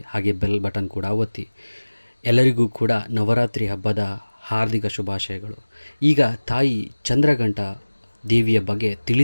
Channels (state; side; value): inverted; both; correlation -1.00